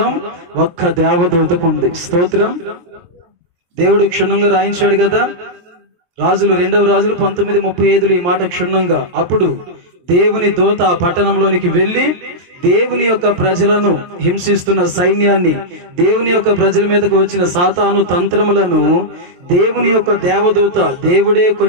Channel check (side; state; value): left; late; 23 ms